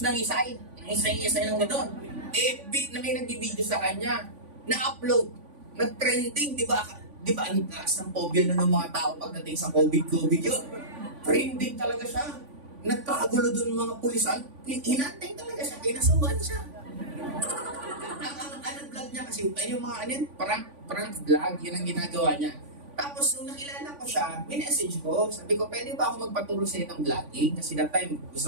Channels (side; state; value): left; late; 3.5 ms